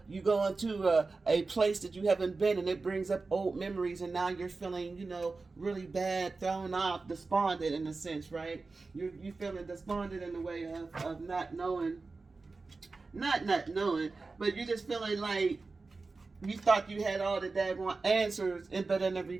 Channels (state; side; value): quieter; left; 3.9 dB